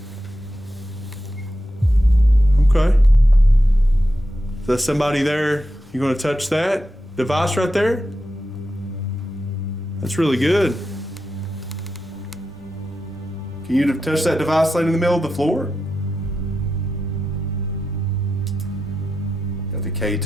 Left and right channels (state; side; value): normal; both; correlation 0.89